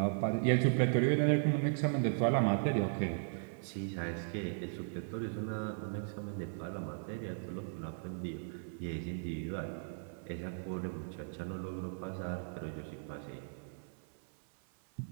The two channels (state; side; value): silent; left; 53 dB below the other